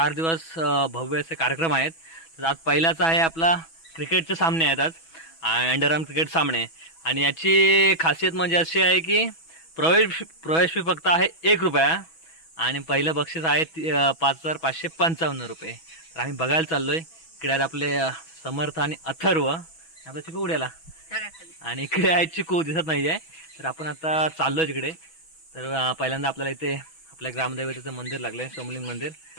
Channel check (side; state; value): right; late; 6.1 ms